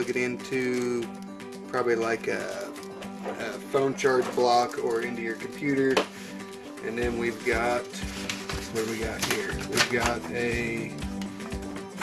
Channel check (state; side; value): identical; both; correlation 1.00